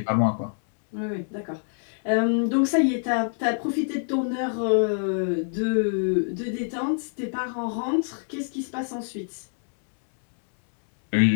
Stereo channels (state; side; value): silent; right; 61 dB below the other